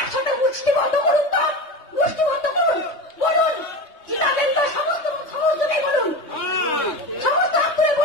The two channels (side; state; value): right; late; 3.2 ms